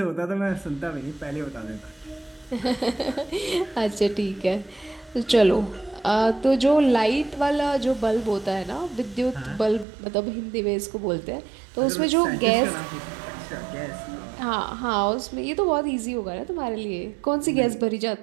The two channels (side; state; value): left; drops out; at 9.9 s